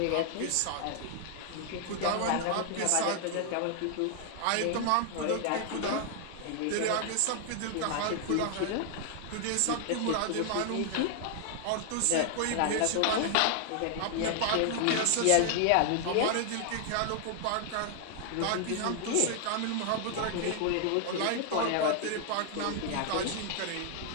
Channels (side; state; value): both; different; correlation 0.00